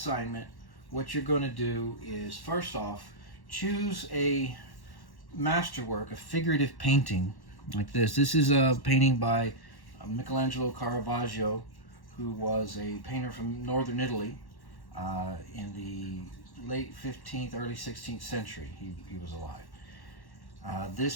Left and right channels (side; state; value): right; late; 1.1 ms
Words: what you're going to do is, first off, choose a masterwork, a figurative painting like this. This is a painting by Michelangelo Caravaggio, who was a painter from northern Italy in the late 15th, early 16th century. He was alive. This